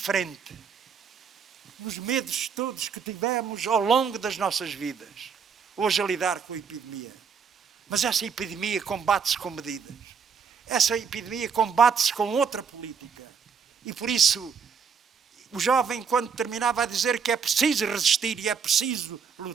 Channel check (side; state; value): left; quieter; 6.4 dB